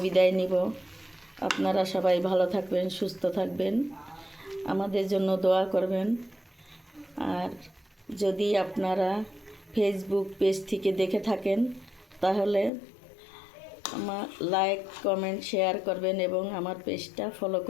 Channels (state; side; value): drops out; right; at 12.7 s